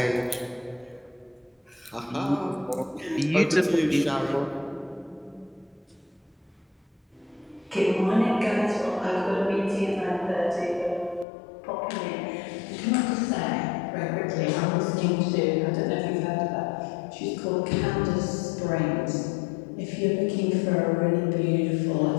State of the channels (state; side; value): drops out; right; at 11.2 s